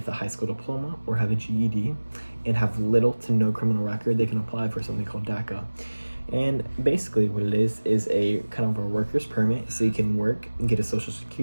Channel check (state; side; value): inverted; both; correlation -1.00